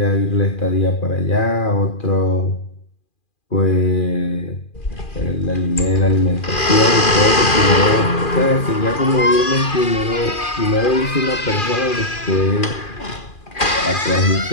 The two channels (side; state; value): right; late; 2.4 ms